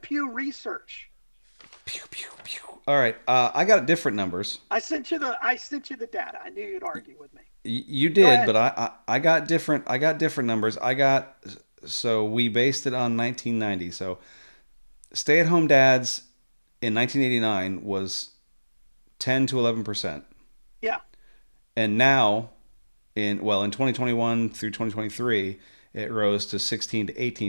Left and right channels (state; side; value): inverted; both; correlation -1.00